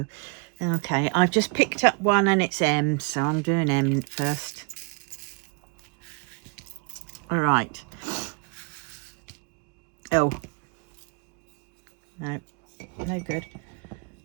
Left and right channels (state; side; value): quieter; left; 35.0 dB